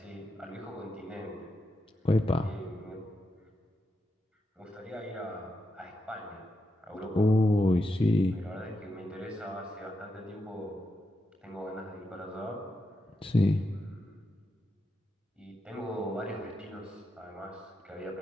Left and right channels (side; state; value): both; normal; correlation 0.85